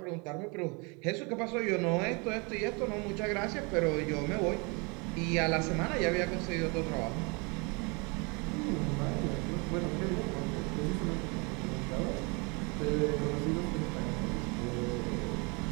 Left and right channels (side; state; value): left; quieter; 30.8 dB